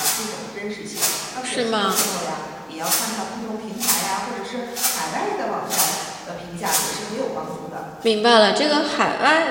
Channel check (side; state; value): both; identical; correlation 1.00